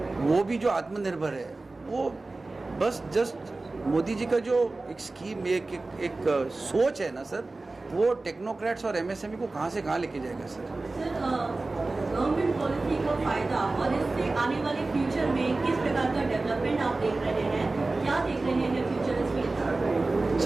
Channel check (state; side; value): quieter; left; 3.3 dB